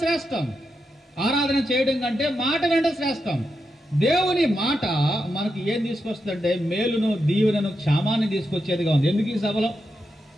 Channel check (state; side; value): normal; both; correlation 0.86